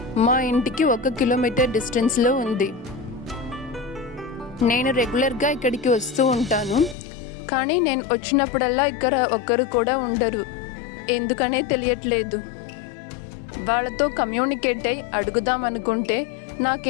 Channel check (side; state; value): right; drops out; at 7.0 s